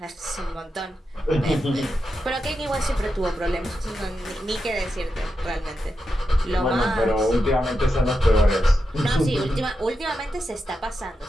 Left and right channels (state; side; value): normal; both; correlation 0.88